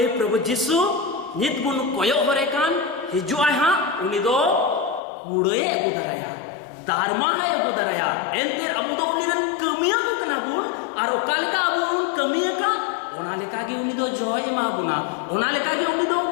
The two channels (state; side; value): drops out; right; at 5.0 s